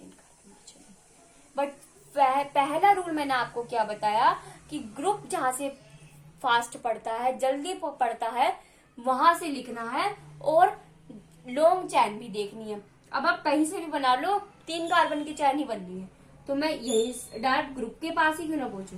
कार्बन की चेन है। बट पहला रूल मैंने आपको क्या बताया कि ग्रुप जहां से फास्ट पड़ता है, जल्दी पड़ता है, वहां से लिखना है, और लॉन्ग चैन भी देखनी है। अब आप कहीं से भी बना लो, 3 कार्बन की चैन ही बननी है। तो मैं यही डायरेक्ट ग्रुप के पास ही क्यों ना पहुंचू,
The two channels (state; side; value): identical; both; correlation 1.00